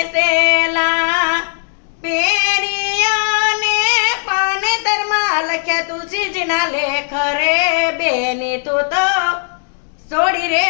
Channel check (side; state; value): right; silent; 61 dB below the other